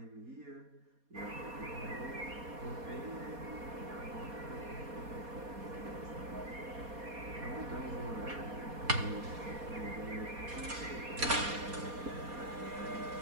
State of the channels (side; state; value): left; late; 4.2 ms